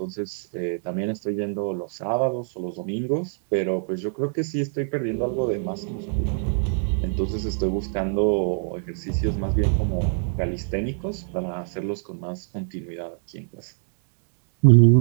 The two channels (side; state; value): left; silent; digital silence